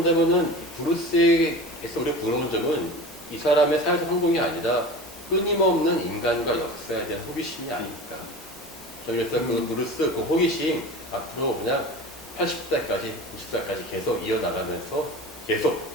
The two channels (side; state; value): both; normal; correlation 0.34